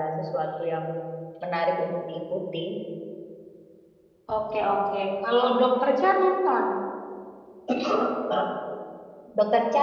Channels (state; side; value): identical; both; correlation 1.00